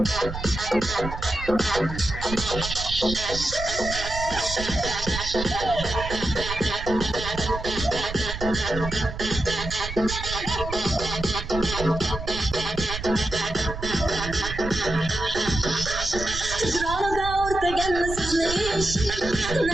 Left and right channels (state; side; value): noise; right; rumble, 8 dB below the sound